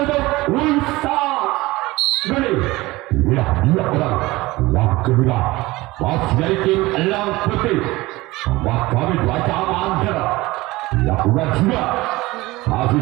untuk Wisang Gede. Inilah dia orang yang kedua masih dari tim Lang Putih. Kami baca amankan. Lakukan sudah. Masih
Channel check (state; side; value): quieter; left; 20.2 dB